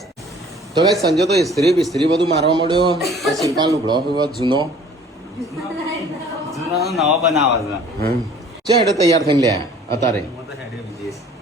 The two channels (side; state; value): both; normal; correlation 0.51